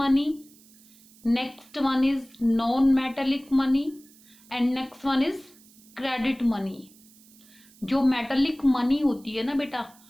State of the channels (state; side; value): noise; right; hiss, 26 dB below the sound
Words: next one is non metallic money and next one is credit money. जो मेटेलिक मनी होती है ना बेटा,